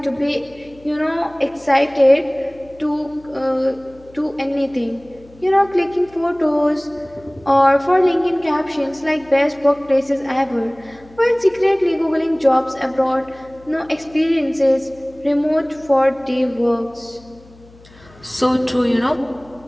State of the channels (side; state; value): left; noise; hum, 25 dB below the sound